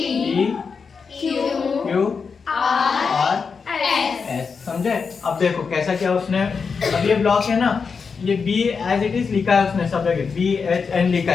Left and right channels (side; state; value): right; quieter; 5.4 dB